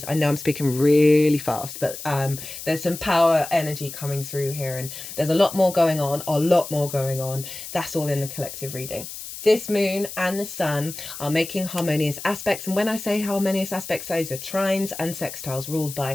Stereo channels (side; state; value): left; noise; hiss, 11 dB below the sound